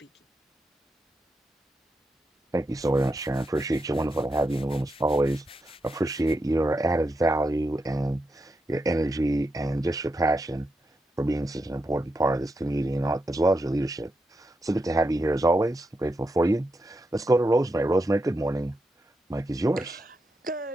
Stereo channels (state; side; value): normal; both; correlation 0.85